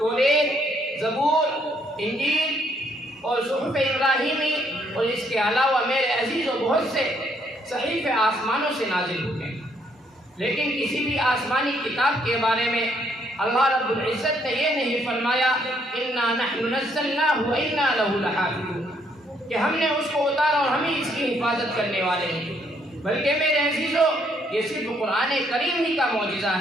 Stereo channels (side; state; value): both; normal; correlation 0.70